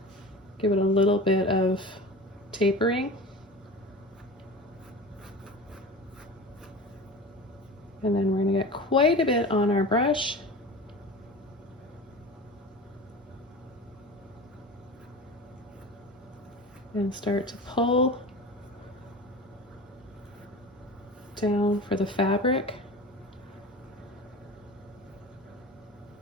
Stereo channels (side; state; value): both; normal; correlation 0.33